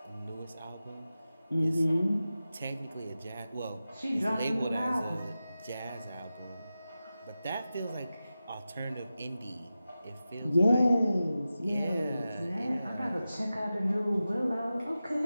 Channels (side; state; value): both; inverted; correlation -0.93